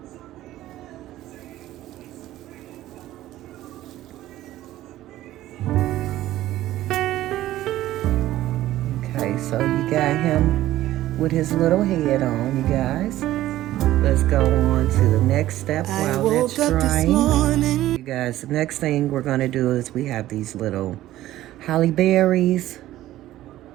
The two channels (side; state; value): left; quieter; 14.6 dB